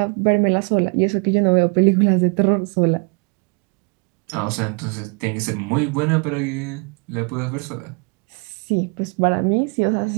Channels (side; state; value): left; quieter; 33.3 dB